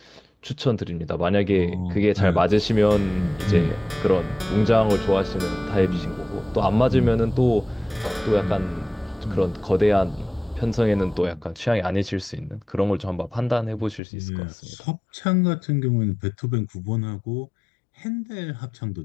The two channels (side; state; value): right; drops out; at 14.0 s